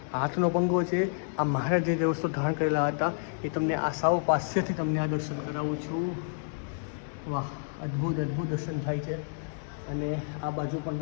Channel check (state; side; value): silent; right; digital silence